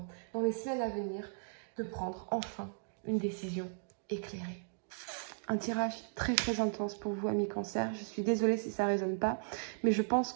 dans les semaines à venir, de prendre enfin une décision éclairée. Un tirage très très intense pour vous, amis cancer. Je suis désolée si ça ne résonne pas, mais je pense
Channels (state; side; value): silent; left; digital silence